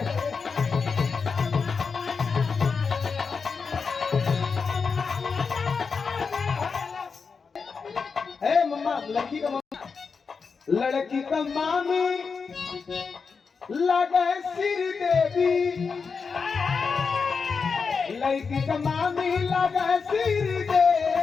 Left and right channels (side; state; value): right; quieter; 5.3 dB